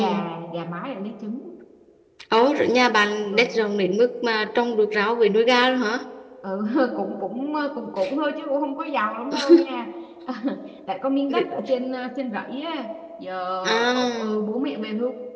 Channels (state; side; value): identical; both; correlation 1.00